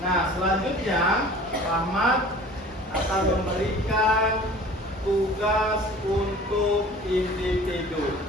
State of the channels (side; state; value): both; normal; correlation 0.45